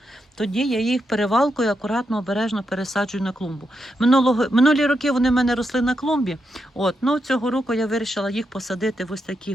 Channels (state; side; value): normal; both; correlation 0.84